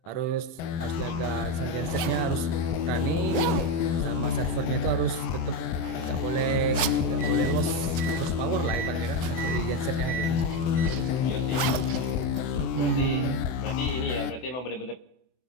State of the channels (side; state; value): right; late; 24 ms